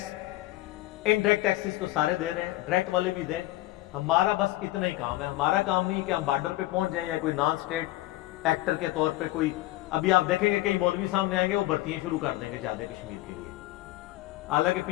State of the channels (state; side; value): quieter; right; 17.2 dB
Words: انڈائریکٹ ٹیکسز تو سارے دے رہے ہیں, ڈائریکٹ والے بھی دیں. ہمارا بس اتنا ہی کام ہے. ہمارا کام نہیں کہ ہم بارڈر پہ پہنچ جائیں یا کوئی نان اسٹیٹ ایکٹر کے طور پہ کوئی. ابھی آپ دیکھیں گے کئی مولوی سامنے آئیں گے, وہ بھرتیاں شروع کر دیں گے جادے کشمیر کے لیے. حالانکہ